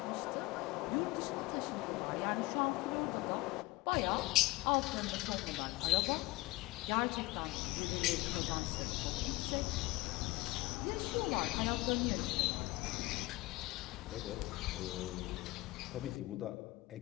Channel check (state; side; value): quieter; right; 20.4 dB